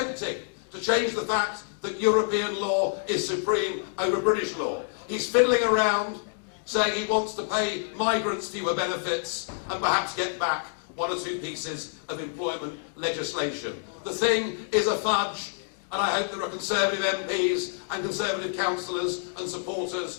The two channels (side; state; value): right; silent; digital silence